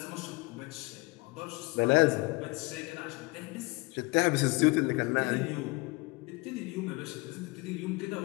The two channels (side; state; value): right; quieter; 24.9 dB